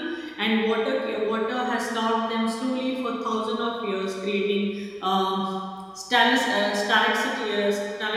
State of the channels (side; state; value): both; identical; correlation 1.00